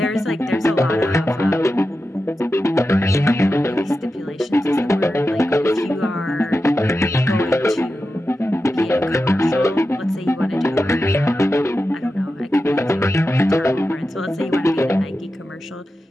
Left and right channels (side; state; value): both; normal; correlation 0.91